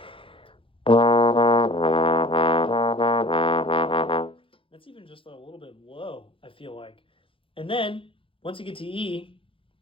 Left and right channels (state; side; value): late; right; 0.26 ms